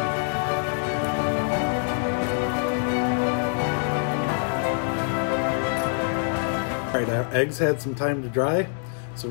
All right, our eggs had some time to dry, so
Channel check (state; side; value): silent; right; 62 dB below the other